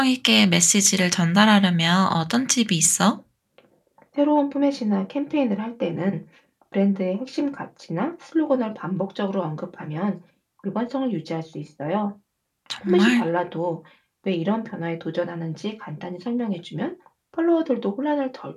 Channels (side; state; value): both; identical; correlation 1.00